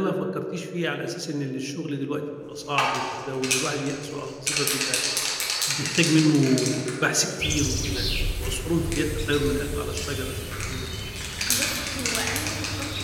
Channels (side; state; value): both; identical; correlation 1.00